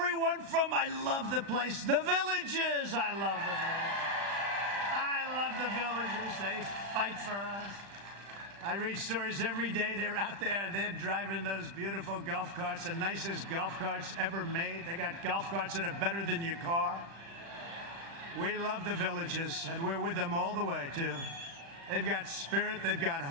from, I love the place, the Villages. I love the Villages. I love the Villages. They fight for us. I read stories every day. They're out there. They're driving those beautiful golf carts, the nicest golf carts ever made. They got golf carts that are better than your car. We love the Villages, and we're with them all the way, too. They've got spirit. They've got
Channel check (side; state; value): left; late; 36 ms